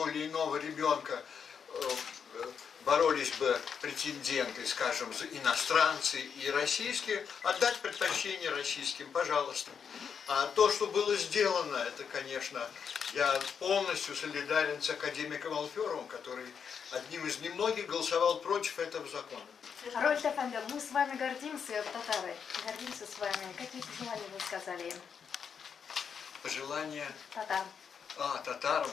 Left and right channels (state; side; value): quieter; right; 6.9 dB